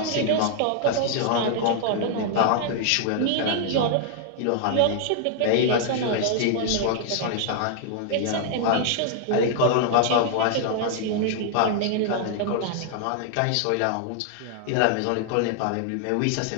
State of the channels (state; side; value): different; both; correlation 0.00